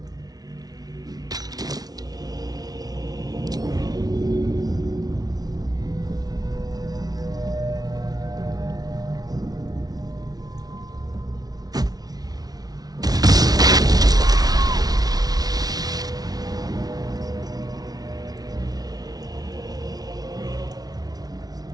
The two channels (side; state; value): left; late; 0.19 ms